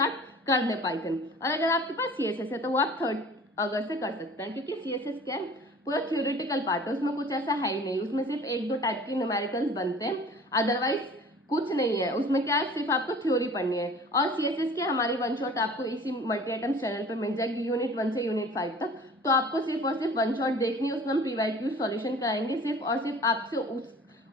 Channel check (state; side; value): normal; both; correlation 0.46